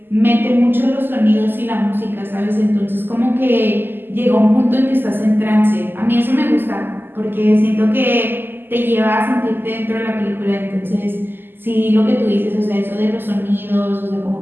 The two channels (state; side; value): late; left; 0.096 ms